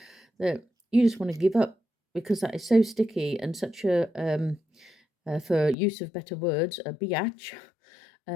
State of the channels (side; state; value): right; drops out; at 5.8 s